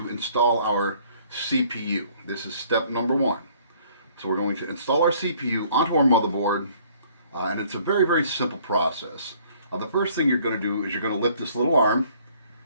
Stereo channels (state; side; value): inverted; both; correlation -0.59